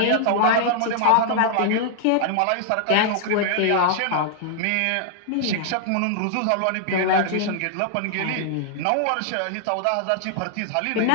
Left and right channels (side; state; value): both; different; correlation -0.01